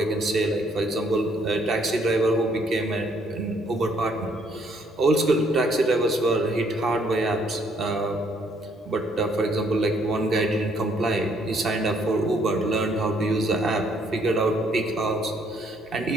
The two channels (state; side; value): normal; both; correlation 0.67